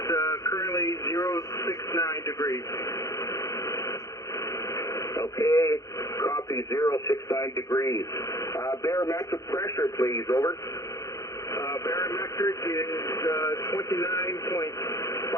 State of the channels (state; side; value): late; right; 0.16 ms